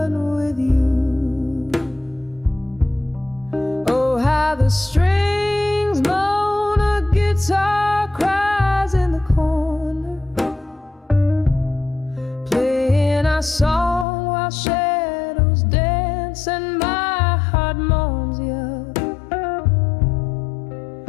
with you. Oh, how strings moan, a guitar cries in the corner, playing our song while shadows dance and my heart moans you.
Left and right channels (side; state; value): right; drops out; at 14.1 s